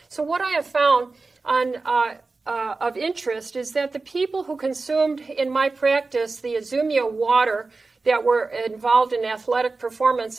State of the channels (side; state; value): left; quieter; 3.8 dB